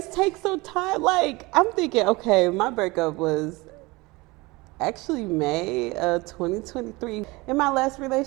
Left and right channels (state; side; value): quieter; left; 23.3 dB